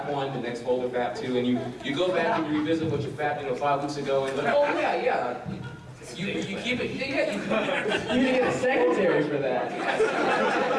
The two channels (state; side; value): identical; both; correlation 1.00